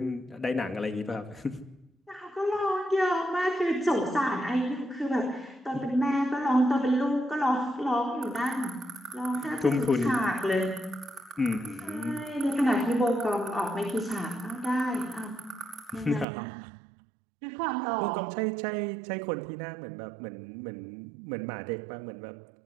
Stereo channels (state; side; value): drops out; left; at 16.2 s